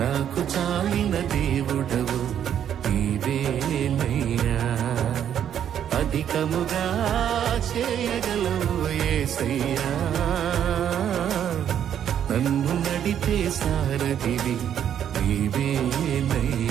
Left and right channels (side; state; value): left; quieter; 9.5 dB